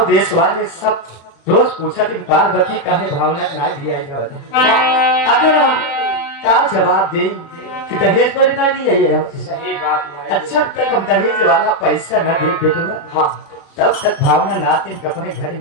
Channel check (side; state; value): right; late; 35 ms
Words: देश वाले सब रोज पूछा कि पार्वती काहे भावना ना दिया जाता अगर हम का जवाब दे कि दहेज पर ना लिया ये सही बात माई। अच्छा तक हम दहेज वाला पैसा न दे बेटवा हां तब तक भावना नाते अपने घर